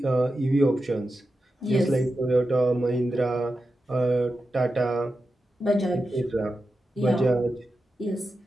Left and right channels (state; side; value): normal; both; correlation 0.90